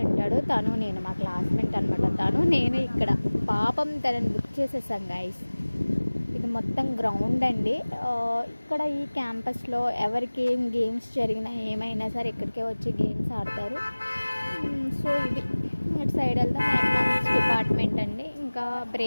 ఉంటాడు, తను నేను మా క్లాస్మేట్ అనమాట. తను నేను ఇక్కడ పాపం తనని బుక్ చేసేసాం గైస్. ఇది మొత్తం గ్రౌండ్ అండి. ఇక్కడ ఈ క్యాంపస్లో ఎవరికి ఏం గేమ్స్ జరిగినా ఏమైనా సరే ఇక్కడికే వచ్చి గేమ్స్ ఆడతారు. సో ఇది ఇటు సైడ్ వెళ్తే మా ఎకనామిక్స్ డిపార్ట్మెంట్ అండి. ఇంకా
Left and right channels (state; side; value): inverted; both; correlation -1.00